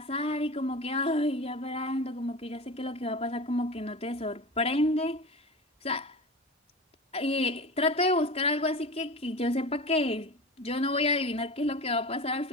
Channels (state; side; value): normal; both; correlation 0.30